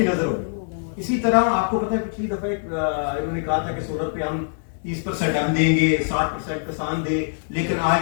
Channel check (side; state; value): right; silent; digital silence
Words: नजर होगी। इसी तरह आपको पता है पिछली दफा इन्होंने कहा था कि सोलर पे हम 30% हम देंगे, 60% किसान दे, लेकिन आज